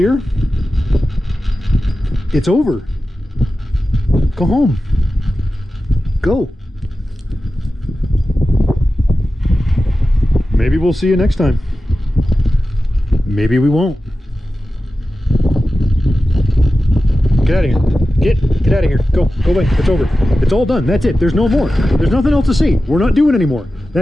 It's over. Go home. Go. Maybe we'll see you next time. Maybe we won't. Get out of here. Get out of here. Go away. It's over. It's all done. That's it. There's no more. There's nothing else to see. We're not doing anymore.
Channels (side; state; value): both; normal; correlation 0.94